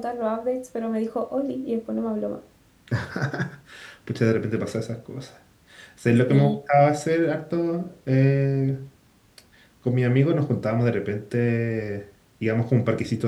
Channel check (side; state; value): both; identical; correlation 1.00